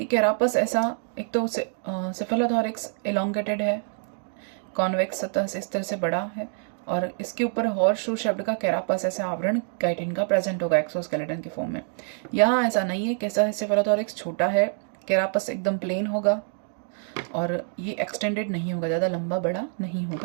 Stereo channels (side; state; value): left; silent; 61 dB below the other